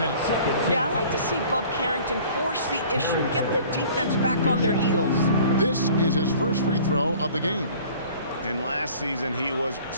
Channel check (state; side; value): inverted; both; correlation -0.49